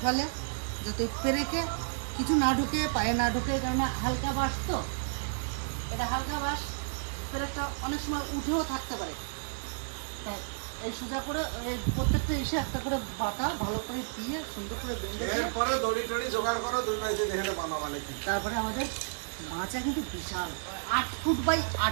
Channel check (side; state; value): left; silent; 57 dB below the other